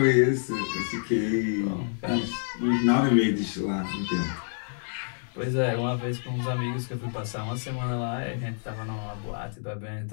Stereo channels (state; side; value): silent; right; digital silence